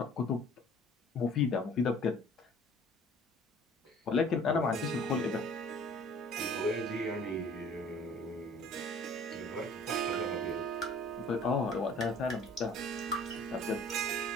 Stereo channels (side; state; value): both; normal; correlation 0.51